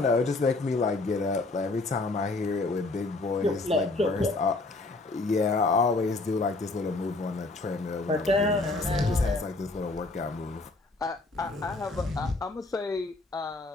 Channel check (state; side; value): quieter; right; 3.2 dB